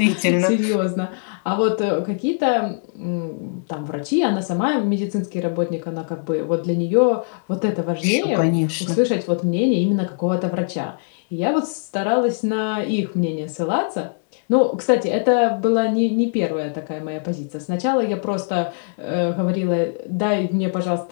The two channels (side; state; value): right; silent; digital silence